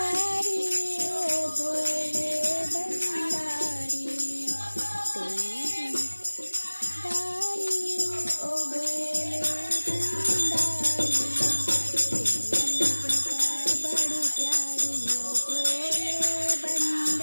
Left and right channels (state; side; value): inverted; both; correlation -1.00